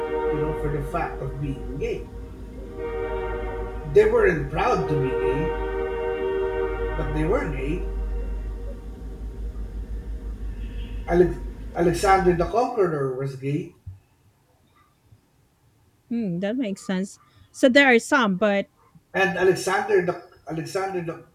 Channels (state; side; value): identical; both; correlation 1.00